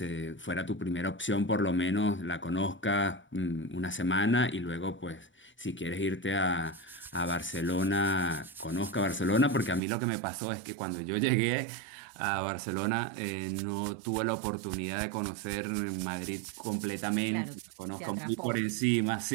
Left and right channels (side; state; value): left; drops out; at 9.8 s